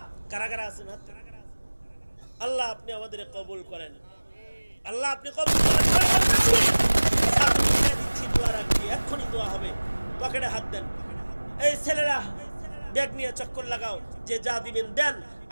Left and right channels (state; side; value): inverted; both; correlation -1.00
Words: কারা কারা আছেন? আল্লাহ আপনি আমাদের কবুল করেন, আল্লাহ আপনি কবুল করেন। দোয়া রাখবি, এক্ষুনি দোয়া হবে, পকেটে হাত দেন। এই ছেলেরা ব্যাগ নিয়ে চক্কর লাগাও, যে যা দিবেন দেন,